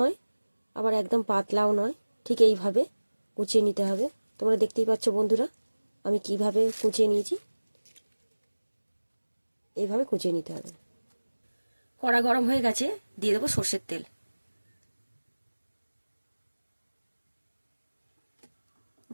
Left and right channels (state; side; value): inverted; both; correlation -1.00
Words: আবার একদম পাতলাও নয়, ঠিক এইভাবে কুচিয়ে নিতে হবে। তোমরা দেখতেই পাচ্ছ বন্ধুরা আমি কিভাবে কুচিয়ে নিয়েছি। এইভাবে কুচিয়ে নিতে হবে। কড়া গরম হয়ে গেছে, দিয়ে দেবো সর্ষের তেল।